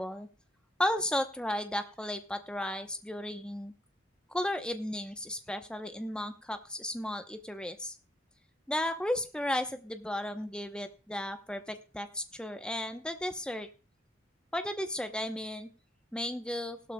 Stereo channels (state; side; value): normal; both; correlation 0.74